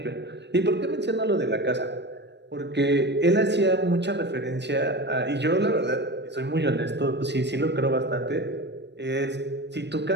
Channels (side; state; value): left; late; 0.50 ms